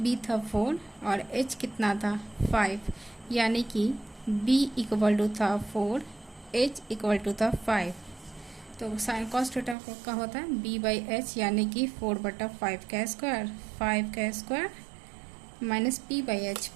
था 4 और h कितना था 5, यानी कि b इक्वल टू था 4, h इक्वल टू था 5। तो साइन कॉस थीटा का होता है b/h, यानी कि 4/5 का स्क्वायर, 5 का स्क्वायर माइनस p/h।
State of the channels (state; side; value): drops out; left; at 9.8 s